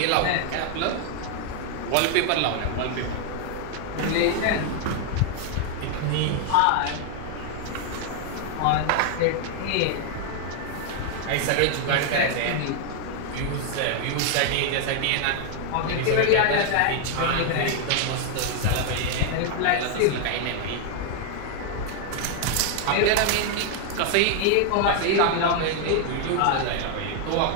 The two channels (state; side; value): different; both; correlation 0.00